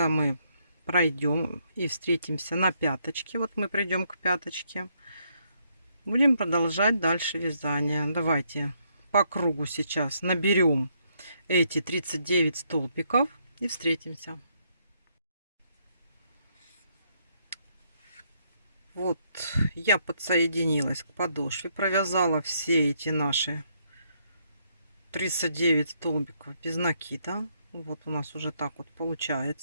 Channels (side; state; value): both; inverted; correlation -0.74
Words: мы пройдем и встретимся на пяточке, вот мы придем к пяточке, будем продолжать дальше вязание. Давайте по кругу сейчас наберем эти 39 столбиков и встретимся. Вот я подсоединилась к подошве, провязала все эти наши 39 столбиков без накида. Вот у нас уже так вот